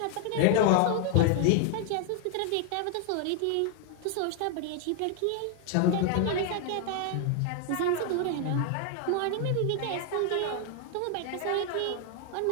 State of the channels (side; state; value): both; different; correlation 0.00